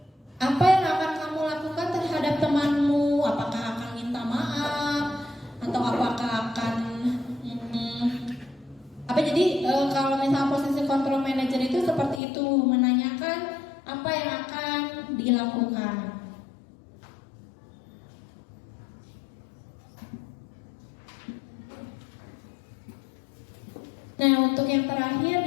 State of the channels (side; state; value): right; drops out; at 12.2 s